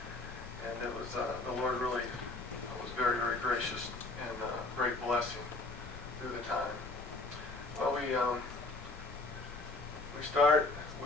And it was the Lord really was very, very gracious and great blessing through the time. Well, we start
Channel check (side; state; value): right; quieter; 3.2 dB